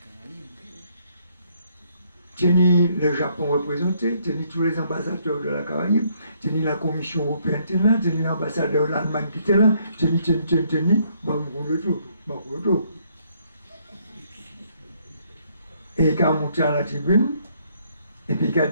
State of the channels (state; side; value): inverted; both; correlation -0.69